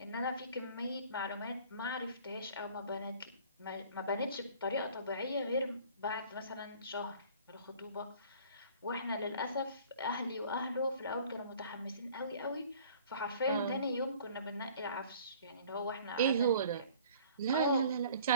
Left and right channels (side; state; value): both; inverted; correlation -0.50